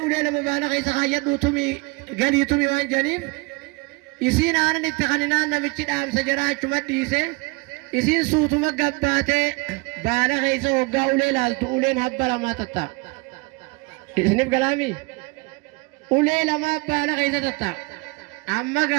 ulee lama baala keessa kaayyadhuu tumi galii tumi waan janiif isiin aanan itti kaninaan namichi dhaamsa jaraa achuma dhiise isiin suutuma gabbaatee baala keessa hoggaa ulee laaltu uleen habba lamaa tatta isiniif galaami ulee lamaa baala keessa tatta amma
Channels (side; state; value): left; quieter; 26.4 dB